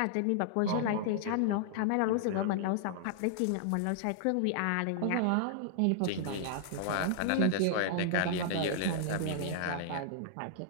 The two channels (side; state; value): both; different; correlation -0.01